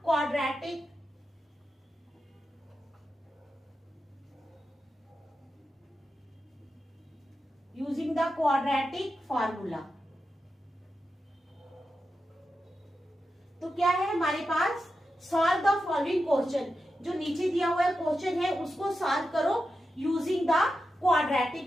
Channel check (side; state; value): both; normal; correlation 0.90